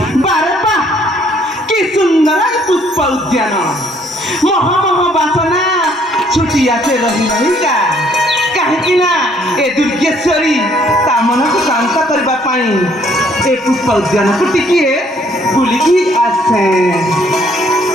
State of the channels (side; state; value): both; normal; correlation 0.64